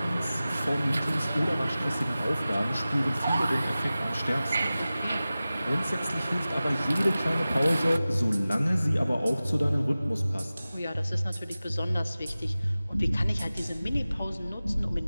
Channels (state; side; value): inverted; both; correlation -0.96